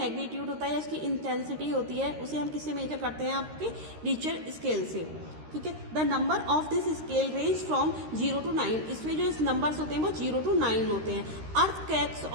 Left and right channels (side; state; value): left; late; 13 ms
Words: होता है, इसकी इंटेंसिटी होती है, उसे हम किससे मेजर करते हैं? आपके रिक्टर स्केल से। ठीक है, the number of this scale range from 0 to 9। इसमें जो नंबर्स होते हैं वो 0 to 9 होते हैं। Earthquakes